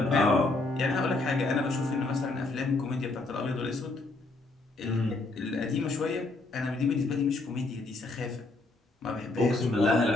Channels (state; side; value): quieter; right; 3.1 dB